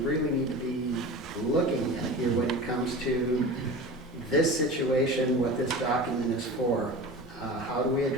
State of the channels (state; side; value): normal; both; correlation 0.33